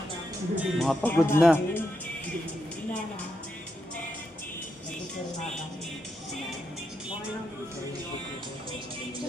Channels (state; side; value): normal; both; correlation 0.83